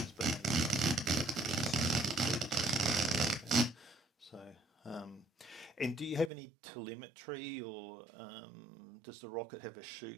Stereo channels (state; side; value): drops out; left; at 6.3 s